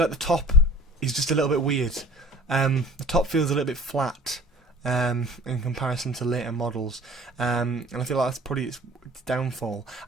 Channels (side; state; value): both; normal; correlation 0.46